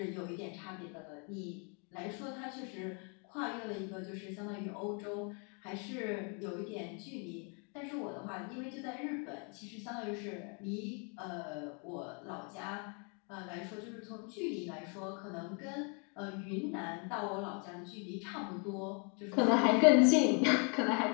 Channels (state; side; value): quieter; right; 36.7 dB